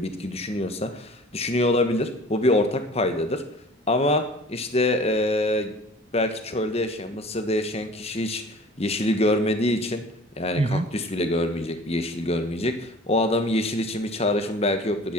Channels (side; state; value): both; normal; correlation 0.45